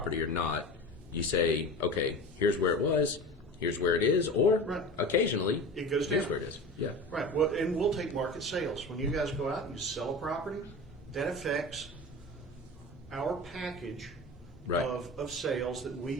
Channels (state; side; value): normal; both; correlation 0.33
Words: or not, you say, okay, here's where it was, here's where it is, or occasionally it goes here's down. where it is. Yeah. Right. Well, and we'll take market sales. When you guys go out and you sell a property, that affects our package of sales that we